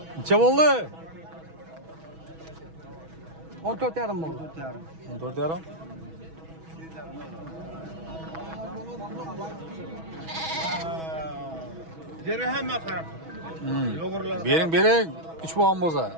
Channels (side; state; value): left; late; 6.2 ms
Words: Necha bo'ldi? 14 yarim bo'ldi. 14,5. Deri hemen karab. Bering, 3 bo'lgan